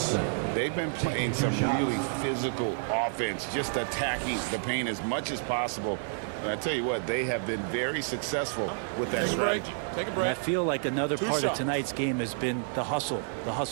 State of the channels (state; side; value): silent; left; 58 dB below the other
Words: They've been playing some really physical offense, just attacking the paint as much as possible. And I tell you what, they have been very successful with that strategy. Take a And break. I feel like another part shots. of tonight's game has been the hustle